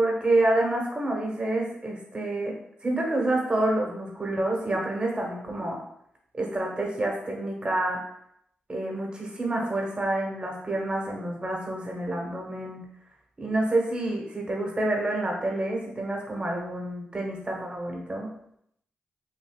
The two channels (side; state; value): both; normal; correlation 0.87